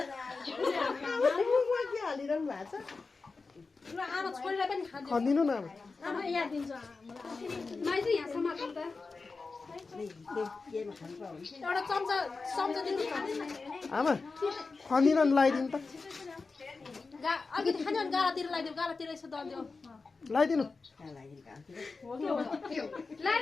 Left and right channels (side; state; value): right; quieter; 4.1 dB